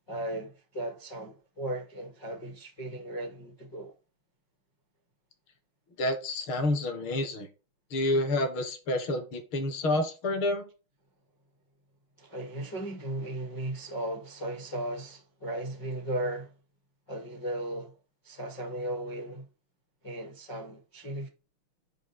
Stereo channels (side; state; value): right; late; 6.4 ms